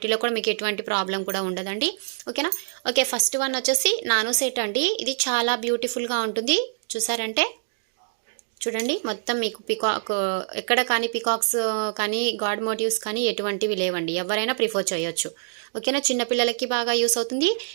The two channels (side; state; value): left; silent; digital silence